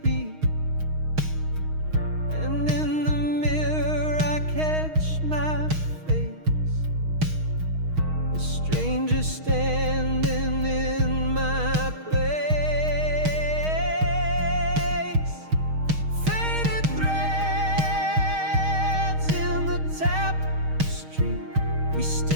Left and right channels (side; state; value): left; late; 6.4 ms